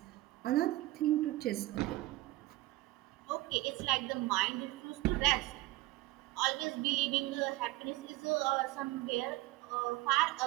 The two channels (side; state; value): left; quieter; 18.9 dB